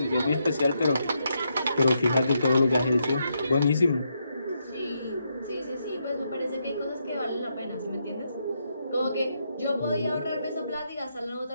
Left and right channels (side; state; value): both; inverted; correlation -0.80